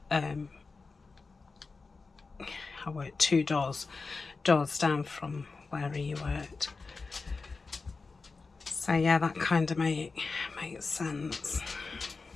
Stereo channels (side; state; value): right; quieter; 4.2 dB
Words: I worked 2 doors down from where he worked. So yeah, that kind of makes sense.